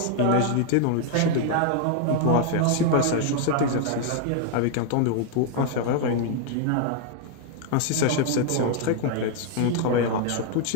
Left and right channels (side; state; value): both; different; correlation 0.00